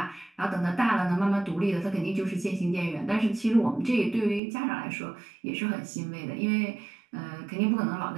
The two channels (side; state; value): left; drops out; at 4.4 s